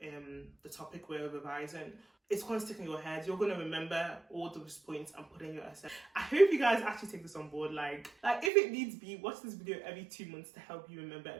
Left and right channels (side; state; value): left; drops out; at 8.5 s